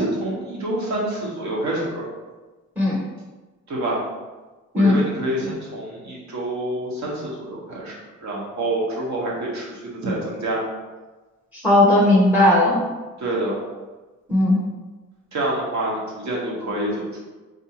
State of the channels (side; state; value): both; normal; correlation 0.43